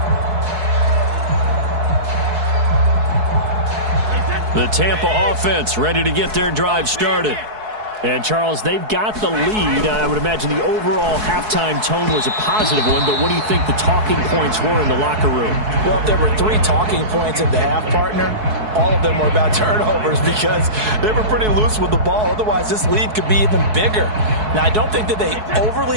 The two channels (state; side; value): late; left; 4.7 ms